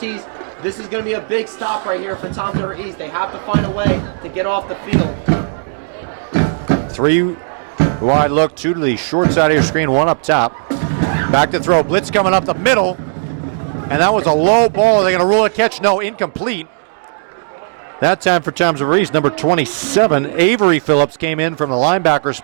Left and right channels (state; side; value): silent; left; 67 dB below the other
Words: This is going to be a big stop right here for Toms River East. They have to find a way to get off the field. 3-wide look, 2 to the short side of your screen, 1 up top. Back to throw, blitz coming up the middle. And that was a low ball. Are they going to rule a catch? No, incomplete. That time for Toms River East, number 27, Avery Phillips came in from the linebacker